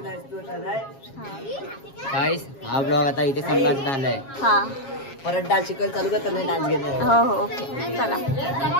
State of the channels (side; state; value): right; late; 7.3 ms